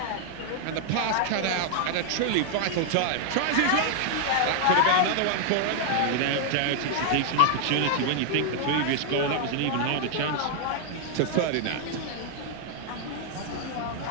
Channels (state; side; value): different; both; correlation 0.00